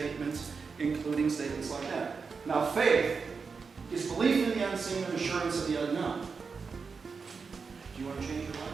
including statements like that. Now, faith is belief in the unseen and assurance of the unknown. Do you want to change your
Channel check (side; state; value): left; quieter; 5.1 dB